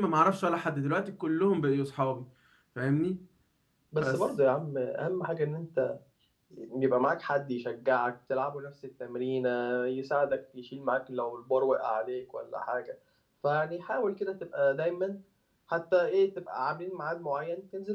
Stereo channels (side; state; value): both; identical; correlation 1.00